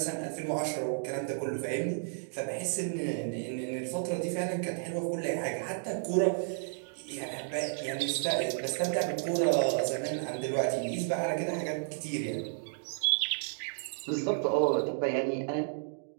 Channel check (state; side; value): silent; left; digital silence